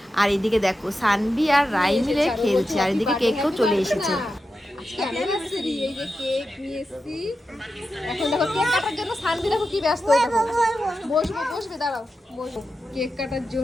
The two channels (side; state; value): both; normal; correlation 0.90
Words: আর এদিকে দেখো সানভি আর রাই মিলে খেলছে, আর এদিকে কেকও চলে এসেছে। এই যে কেক নিয়ে এসেছি। এখন দেখো কেক কাটার জন্য সানভি দেখো কি ব্যস্ত হয়ে দেখো। বসবে দাঁড়াও, বসো। কেক কাটার